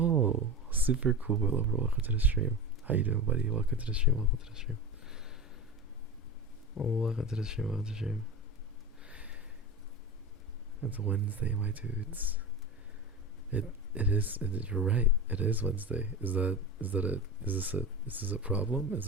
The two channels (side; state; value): both; normal; correlation 0.27